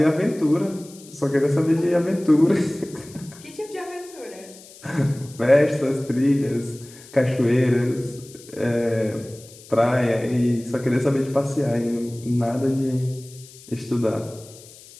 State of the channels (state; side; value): noise; left; hiss, 21 dB below the sound